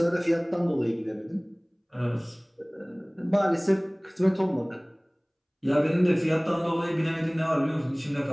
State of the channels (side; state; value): both; identical; correlation 1.00